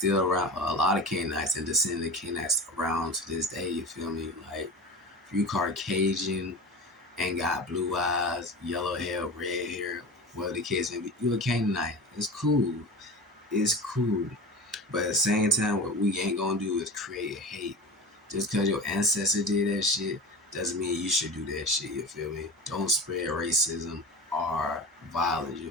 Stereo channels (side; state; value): both; normal; correlation 0.31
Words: around, a lot of Canaanites and descendant Canaanites around to this day, you feel me? Like if you Caucasian and got blue eyes, yellow hair, red hair, whatever the case may be, you a Canaanite. It's cool. It's cool. But at the same time, what we ain't gonna do is create hate. Just because your ancestor did that shit doesn't mean you should do that shit, you feel me? Don't spread racism or violence, you